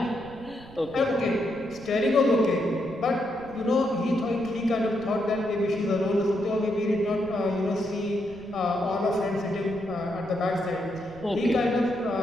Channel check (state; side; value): noise; right; rumble, 19 dB below the sound